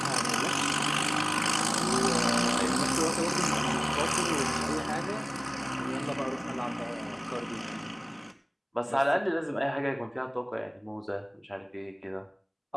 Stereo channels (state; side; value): identical; both; correlation 1.00